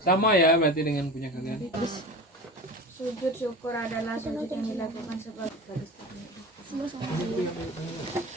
ya berarti dengan punya kalian. Sujud syukur adalah sujud yang dilakukan sebagai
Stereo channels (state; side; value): normal; both; correlation 0.33